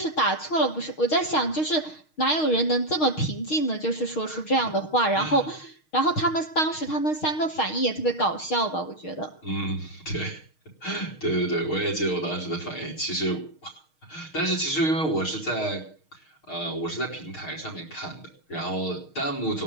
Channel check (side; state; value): right; late; 6.4 ms